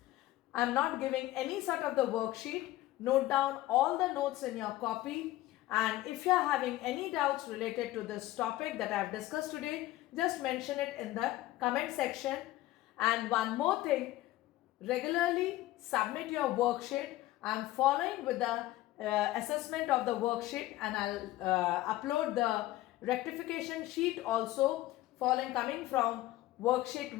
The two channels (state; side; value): quieter; right; 16.2 dB